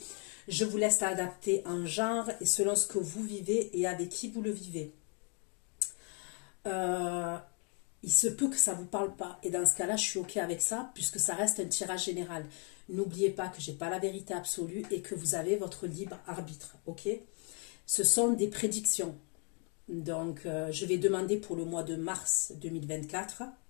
Je vous laisse adapter en genre et selon ce que vous vivez et avec qui vous le vivez. Il se peut que ça ne vous parle pas. Et dans ce cas-là, je suis OK avec ça, puisque ça reste un tirage général. N'oubliez pas que je n'ai pas la vérité absolue et que vous avez votre libre arbitre. OK? Ce sont des prédictions. Donc, je vais demander pour le mois de mars 2024.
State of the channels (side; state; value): right; quieter; 38.4 dB